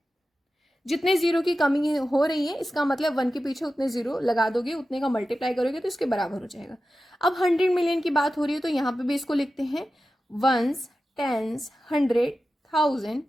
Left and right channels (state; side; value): normal; both; correlation 0.93